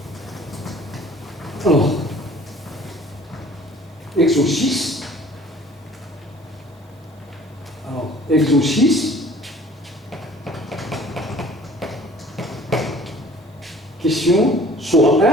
Alors, exo 6. Alors, exo 6. Question question soit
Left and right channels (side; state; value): both; normal; correlation 0.51